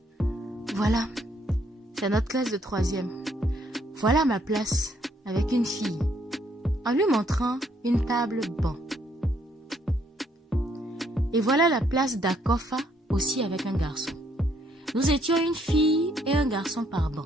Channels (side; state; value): both; normal; correlation 0.69